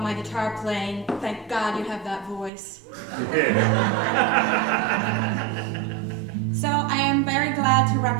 my guitar playing, thank God you have that voice. So I am very glad to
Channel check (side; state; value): left; drops out; at 2.5 s